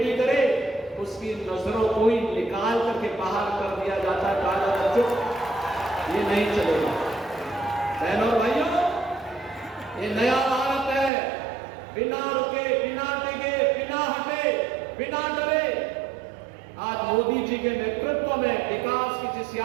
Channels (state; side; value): drops out; left; at 11.1 s